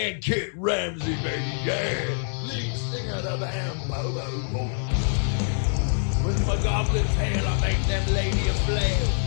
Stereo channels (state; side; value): silent; right; digital silence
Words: Kit Ramsey, baby. Yeah, lead singer of the band Bobo. With my goblin tail, I make them lady a flail.